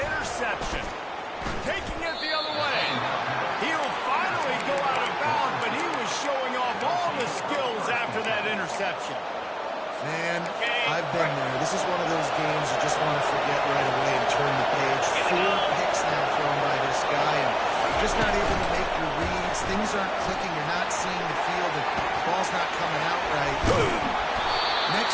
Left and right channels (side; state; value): both; identical; correlation 1.00